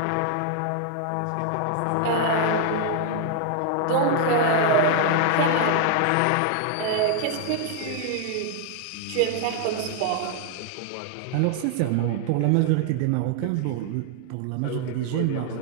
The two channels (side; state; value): both; different; correlation 0.00